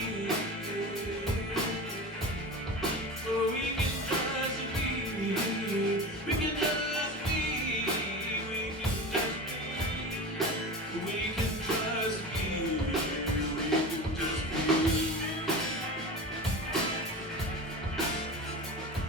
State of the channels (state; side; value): normal; both; correlation 0.30